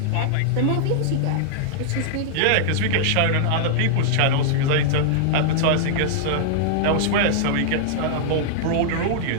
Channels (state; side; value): different; both; correlation -0.01